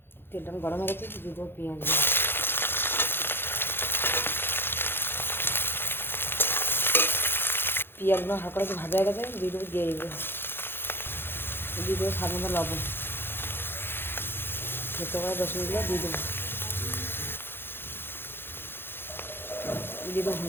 তেলটা আমি গরম হয়ে গেছে, দিয়ে দেবো পেঁয়াজ। পেঁয়াজগুলো হালকা একটু ভাজা হয়ে গেছে, দিয়ে দেবো দিয়ে দেবো স্বাদ মতো লবণ। সেদ্ধ করা রসুনগুলো দিয়ে দেবো, দিয়ে দেবো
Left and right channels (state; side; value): late; right; 0.10 ms